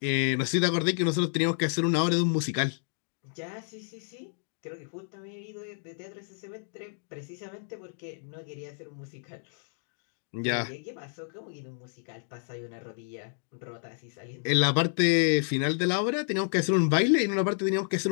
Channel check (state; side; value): silent; right; digital silence